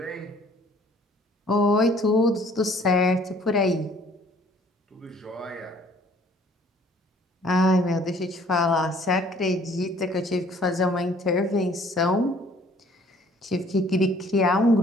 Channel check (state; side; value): normal; both; correlation 0.57